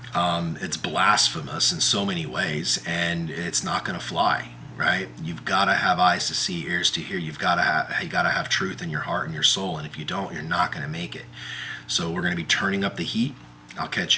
It's blasphemous in so many ways, and it's not going to fly, right? You've got to have eyes to see, ears to hear. You got to have truth in your heart and your soul, and if you don't, you're not going to make it. So we're going to be turning up the heat. I'll catch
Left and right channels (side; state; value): both; identical; correlation 1.00